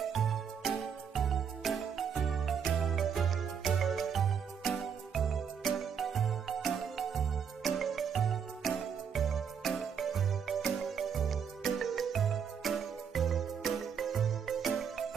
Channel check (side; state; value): left; quieter; 7.3 dB